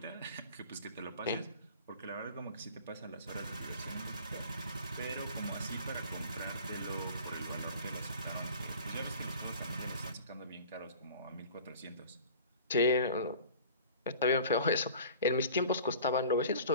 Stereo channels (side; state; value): both; inverted; correlation -0.44